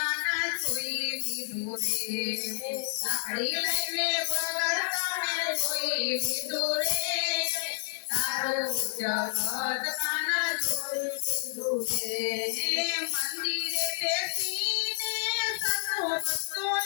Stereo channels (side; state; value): right; silent; 58 dB below the other